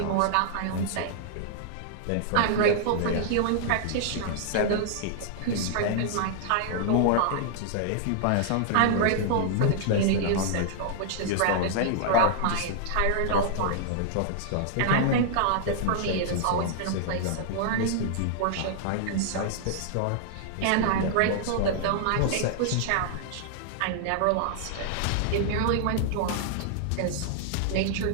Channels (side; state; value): both; different; correlation -0.01